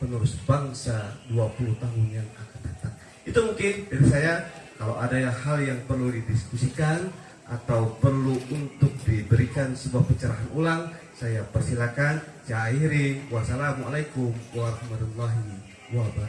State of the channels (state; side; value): identical; both; correlation 1.00